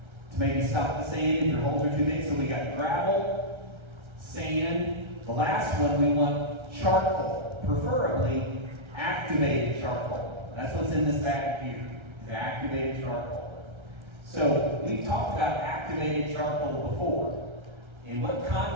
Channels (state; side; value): late; left; 1.3 ms